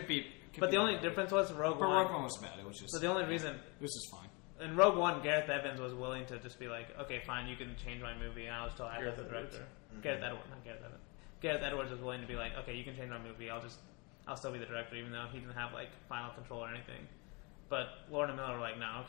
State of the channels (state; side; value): quieter; right; 29.6 dB